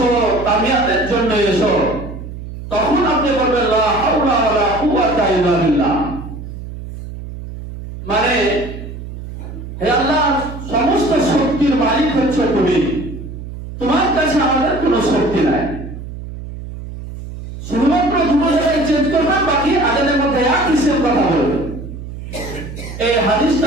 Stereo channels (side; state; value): right; noise; hum, 11 dB below the sound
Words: কামিয়াতের জন্য এসো, তখন আপনি বলবেন লা হাওলা ওয়ালা কুওয়াতা ইল্লা বিল্লাহ। মানে হে আল্লাহ, সমস্ত শক্তির মালিক হচ্ছে তুমি, তোমার কাছে আমাদের কোনো শক্তি নাই। শুধুমাত্র দুটো জায়গায় চেঞ্জ করবেন, বাকি আজানের মধ্যে একই সেম কথা বলবেন। এই